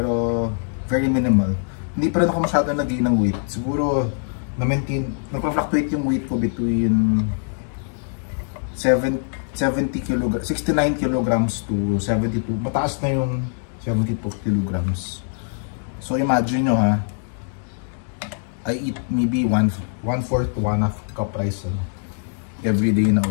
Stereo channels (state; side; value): silent; right; digital silence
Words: very minimal. Hindi pa rin ako masyado nag-gain ng weight. Siguro, nagpa-fluctuate yung weight ko between 69 kilograms to 72. Mataas na yung 72 kilograms. So imagine nyo ha, I eat maybe 1/4 to 1/2 cup rice everyday na